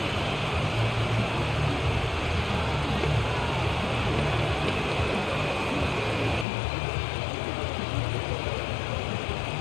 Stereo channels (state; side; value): drops out; right; at 6.5 s